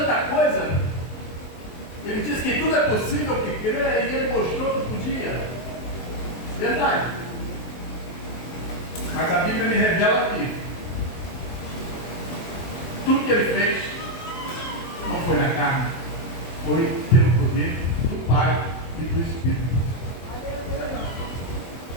coisa? Ele disse que tudo é possível que crê e ele mostrou que podia. Verdade. Mas a Bíblia me revela que tudo que ele fez não foi na carne, foi pelo poder do Pai e do Espírito.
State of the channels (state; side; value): late; right; 23 ms